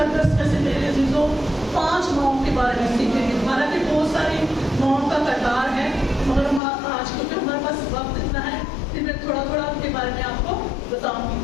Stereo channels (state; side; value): drops out; right; at 6.6 s